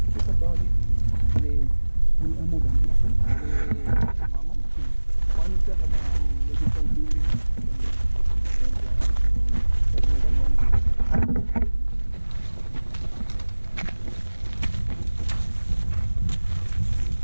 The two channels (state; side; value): inverted; both; correlation -1.00